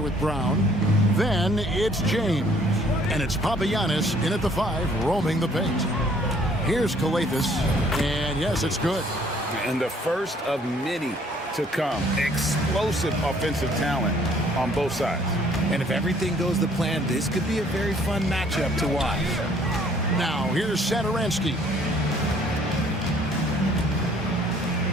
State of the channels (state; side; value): normal; both; correlation 0.60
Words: with Brown. Then it's James. And it's Papagiannis in at the 5, roaming the paint. Here's Calathes, and yes, it's good. And the first of many to come. Explosive offensive talent on both sides. And if everything goes to plan, this could be a very fun matchup to watch. Now, here's Satoransky.